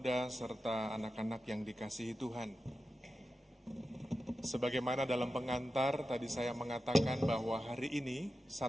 serta anak-anak yang dikasihi Tuhan. Sebagaimana dalam pengantar, tadi saya mengatakan bahwa hari ini,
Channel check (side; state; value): both; normal; correlation 0.92